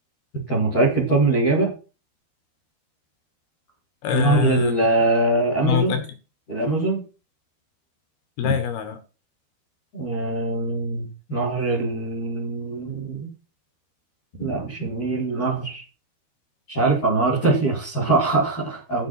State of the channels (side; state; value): right; late; 13 ms